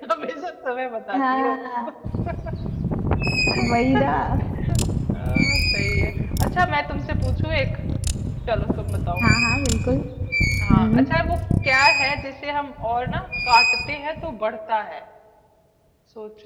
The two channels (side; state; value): both; identical; correlation 1.00